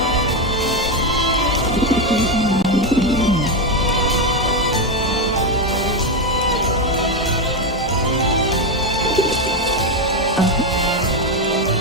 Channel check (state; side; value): normal; both; correlation 0.09